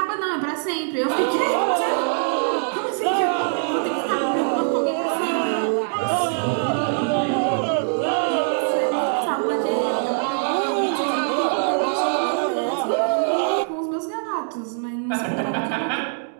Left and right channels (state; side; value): silent; left; digital silence